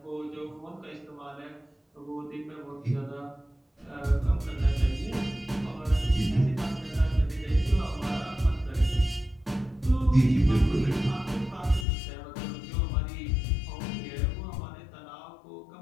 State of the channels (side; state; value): right; drops out; at 11.9 s